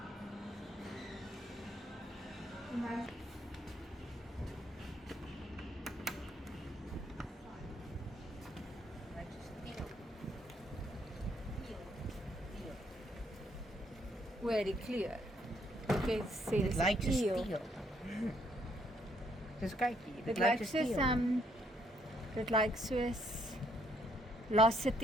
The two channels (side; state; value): both; normal; correlation 0.70